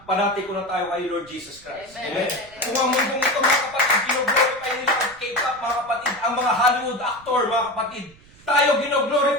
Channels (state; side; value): noise; right; rumble, 25 dB below the sound